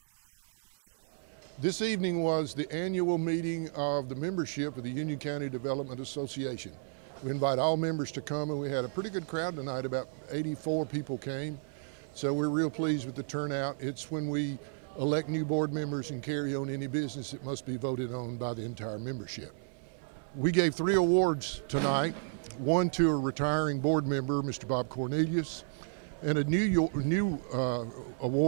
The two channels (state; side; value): silent; left; 56 dB below the other